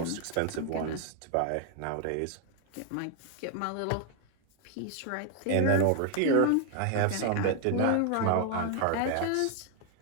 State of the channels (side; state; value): both; different; correlation 0.00